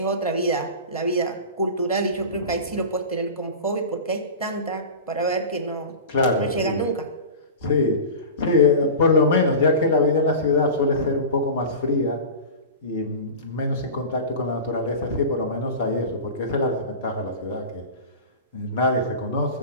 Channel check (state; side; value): inverted; both; correlation -0.31